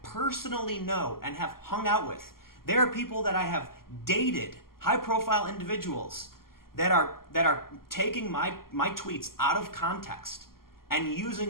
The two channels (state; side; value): late; right; 0.92 ms